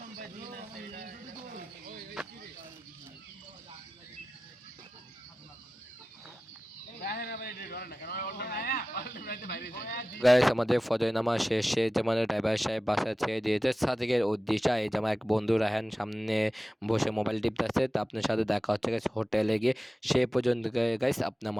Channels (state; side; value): normal; both; correlation 0.95